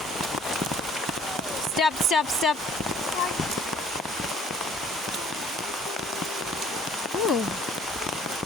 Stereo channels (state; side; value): normal; both; correlation 0.55